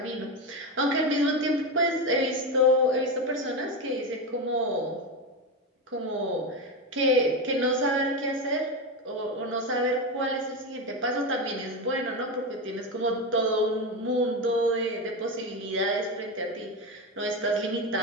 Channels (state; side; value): normal; both; correlation 0.15